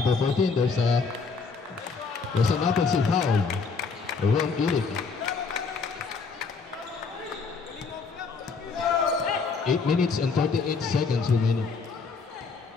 14, there's an offensive foul. Wrong Eric. 8 minutes and 38 seconds remaining.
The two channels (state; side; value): quieter; right; 4.8 dB